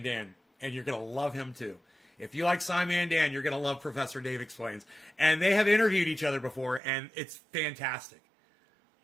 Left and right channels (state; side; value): drops out; left; at 6.8 s